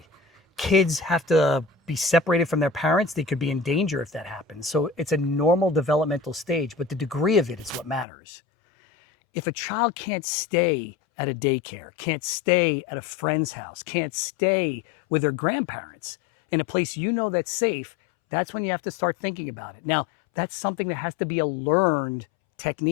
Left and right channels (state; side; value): drops out; right; at 8.1 s